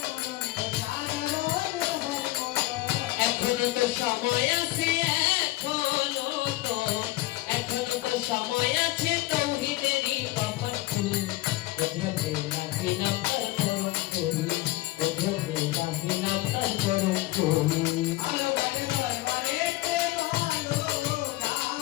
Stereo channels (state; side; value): quieter; right; 18.6 dB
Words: এখনো তো সময় আছে এখনো তো সময় আছে তৌহিদেরই কপাল ফুল কুদরতে লাগি নাম তার পরম ফুল কুদরতে লাগি নাম তার পরম ফুল